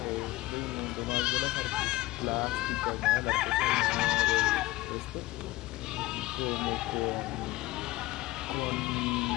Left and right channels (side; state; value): right; quieter; 18.4 dB